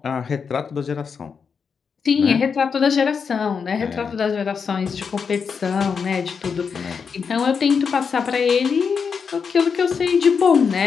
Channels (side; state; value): right; quieter; 6.0 dB